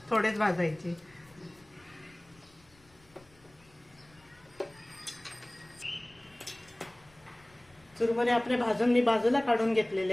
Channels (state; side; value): noise; left; rumble, 29 dB below the sound